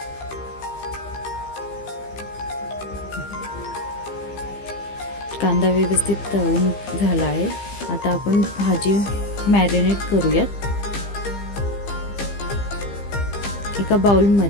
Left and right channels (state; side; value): late; right; 15 ms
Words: कांदा व्यवस्थित तळून झाला आहे। आता आपण भाजी मॅरिनेट करूयात। एका बाउल